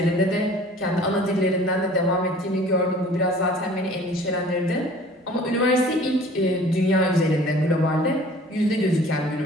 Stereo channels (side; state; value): both; normal; correlation 0.49